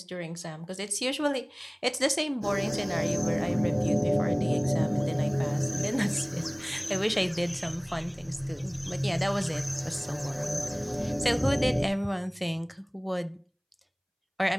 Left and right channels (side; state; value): both; identical; correlation 1.00